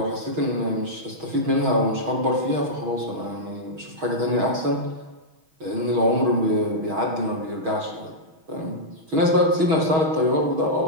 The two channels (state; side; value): late; left; 6.3 ms